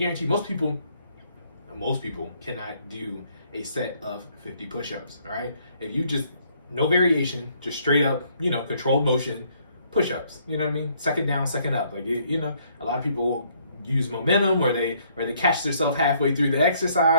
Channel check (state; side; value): inverted; both; correlation -0.67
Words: most people cannot do a set of 50 push-ups, all right? If you just, no variation, just straight up, controlled motion, push-ups, you know what I mean? Second down, second up. Like, a lot of people use momentum or they catch themselves halfway through the